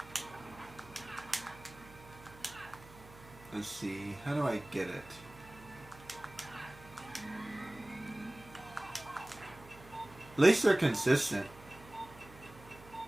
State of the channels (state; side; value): noise; right; hum, 20 dB below the sound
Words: Let's see, how do I get it? At least they're consistent.